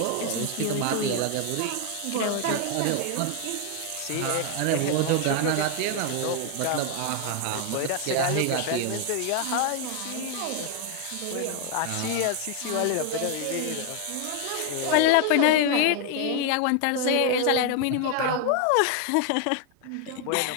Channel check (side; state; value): both; different; correlation 0.00